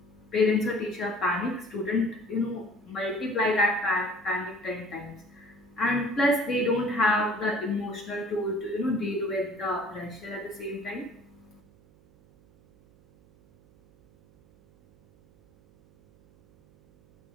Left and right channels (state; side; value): noise; right; hum, 28 dB below the sound